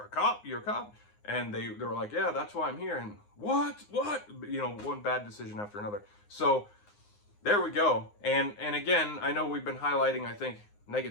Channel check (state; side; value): late; right; 9.7 ms